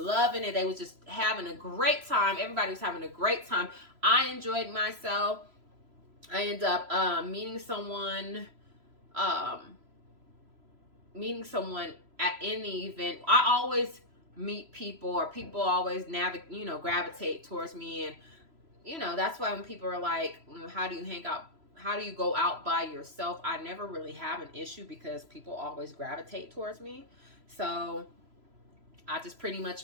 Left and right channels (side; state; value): left; late; 3.0 ms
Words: it. They was just having a great time. Everybody was having a great time. I enjoyed myself. I ended up meeting someone in the event. I always meet people, or people always gravitate towards me, and that's why when people are like, how do you hang out? How do you go out by yourself? I never really have an issue because people always gravitate towards me. So I just pretty